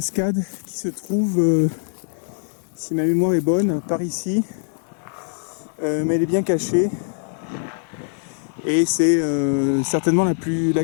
qui se trouve, si ma mémoire est bonne, par ici. Mais elle est bien cachée. Et c'est certainement la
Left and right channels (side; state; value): right; silent; 58 dB below the other